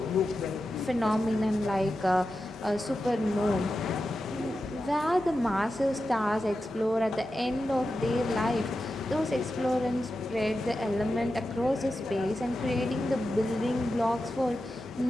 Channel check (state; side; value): normal; both; correlation 0.91